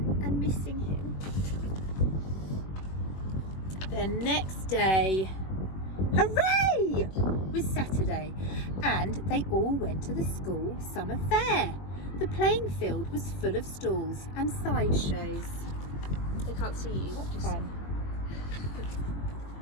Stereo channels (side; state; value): right; late; 21 ms